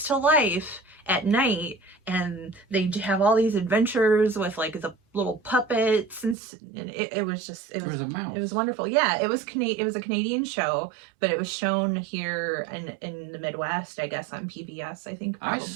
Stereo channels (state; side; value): drops out; left; at 6.4 s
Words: to life at night, and they have all these adventures with like the little puppets, and it was a mouse. It was wonderful. Yeah, it was a Canadian show, but it was shown here in the Midwest, I guess, on PBS. I think